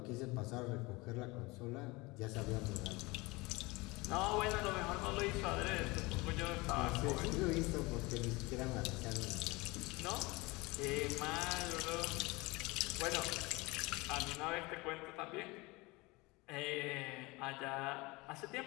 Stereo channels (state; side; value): quieter; right; 23.7 dB